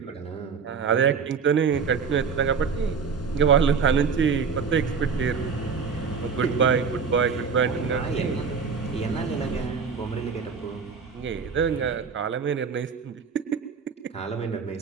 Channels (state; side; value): quieter; left; 5.8 dB